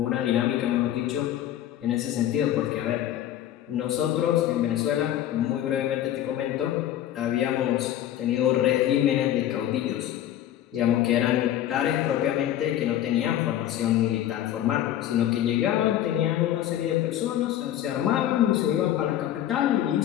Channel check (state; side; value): quieter; right; 12.0 dB